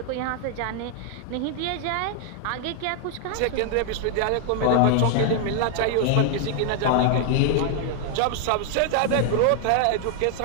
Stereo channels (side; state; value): both; different; correlation 0.00